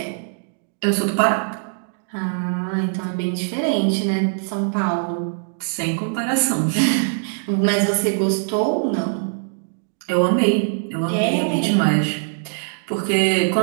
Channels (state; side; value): silent; left; digital silence